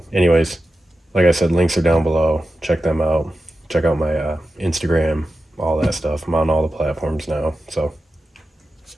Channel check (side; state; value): both; normal; correlation 0.92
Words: anyways, like I said, links are down below. Check them out. Check out my Instagram, all that stuff. I'm on all the platforms now. So,